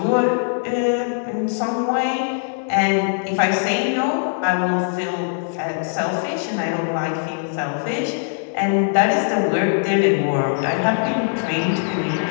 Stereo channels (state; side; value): silent; right; 65 dB below the other